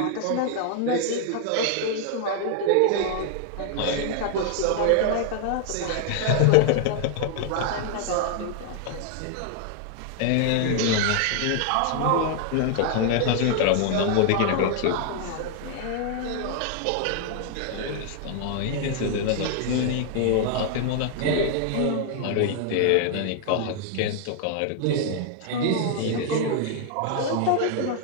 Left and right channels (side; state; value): both; different; correlation 0.00